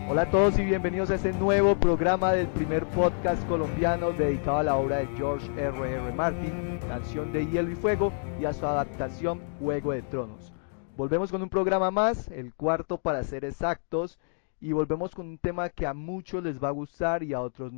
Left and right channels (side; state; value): right; silent; digital silence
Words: Hola a todos y bienvenidos a este nuevo programa del primer podcast colombiano dedicado a la obra de George R.R. Martin, Canción de Hielo y Fuego, y a su adaptación Juego de Tronos. Volvemos con un programa más, el cuarto para ser exactos, y volvemos con un tema que a muchos les va a gustar y a otros